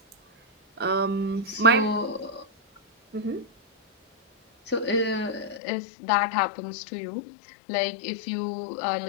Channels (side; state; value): right; drops out; at 5.6 s